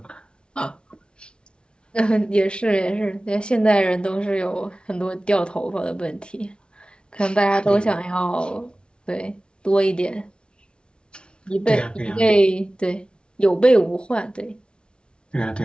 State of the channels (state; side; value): late; right; 0.056 ms